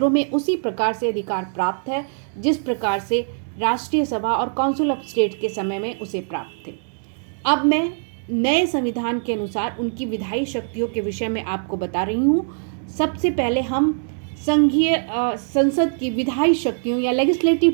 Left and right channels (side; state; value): left; silent; digital silence